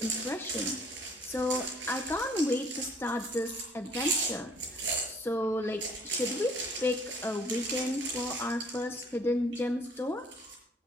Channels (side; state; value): both; normal; correlation 0.58